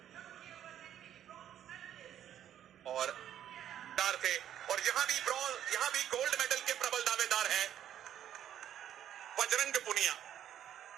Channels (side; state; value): left; quieter; 10.7 dB